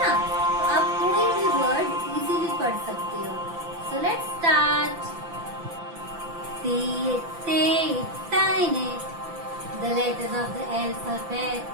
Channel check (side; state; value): left; late; 5.9 ms